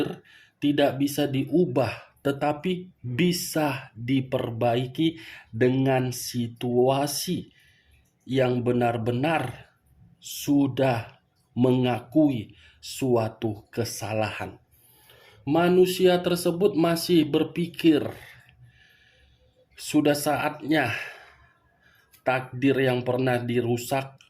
tidak bisa diubah, tetapi bisa diperbaiki dengan situasi yang benar-benar sudah mengakui suatu kesalahan. Manusia tersebut masih berpikir sudah saatnya takdir yang pernah dirusak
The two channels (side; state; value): both; identical; correlation 1.00